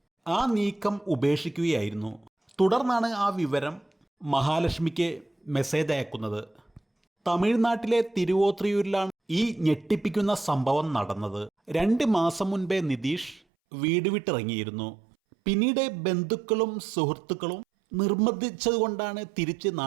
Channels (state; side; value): drops out; left; at 13.4 s